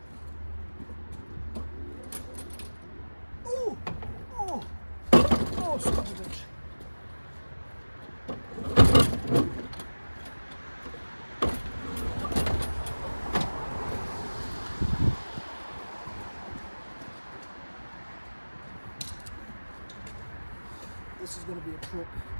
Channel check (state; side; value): inverted; both; correlation -1.00